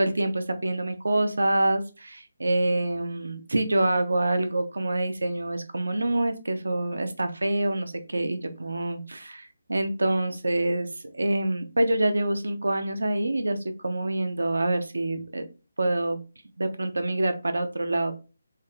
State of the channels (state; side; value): inverted; both; correlation -0.95